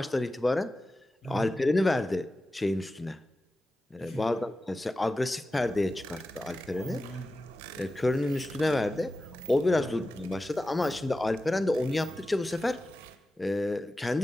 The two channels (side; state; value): both; normal; correlation 0.94